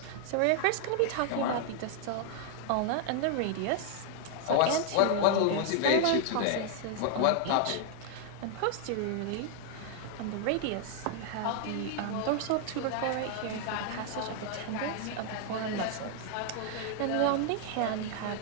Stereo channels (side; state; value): both; different; correlation 0.00